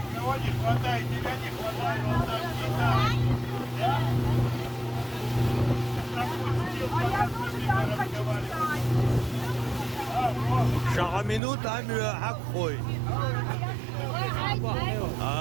Не хватает, тебя не хватает, вот так Шагаминут амю акхой.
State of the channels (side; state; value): left; drops out; at 11.4 s